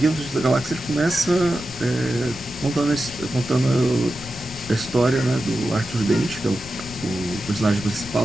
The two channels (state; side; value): noise; left; rumble, 16 dB below the sound